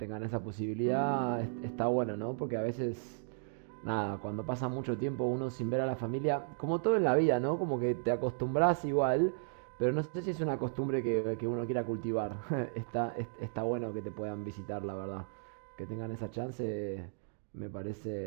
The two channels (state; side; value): silent; left; digital silence